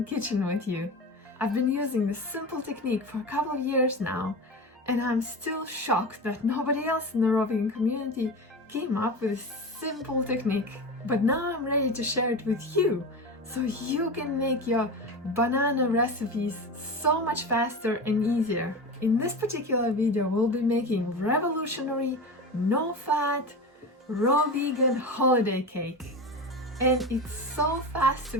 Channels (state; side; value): normal; both; correlation 0.26